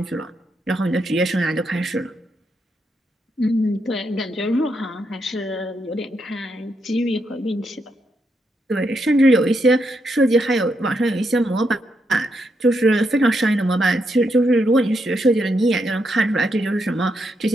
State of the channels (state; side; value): normal; both; correlation 0.80